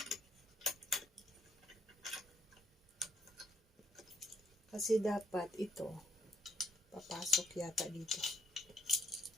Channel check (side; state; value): both; normal; correlation 0.70